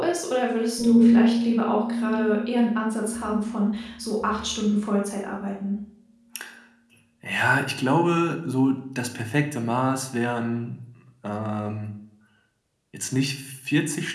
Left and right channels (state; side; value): identical; both; correlation 1.00